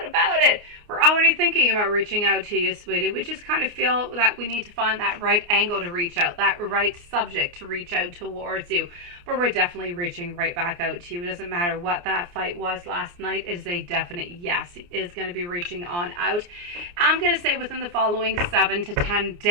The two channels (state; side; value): late; left; 29 ms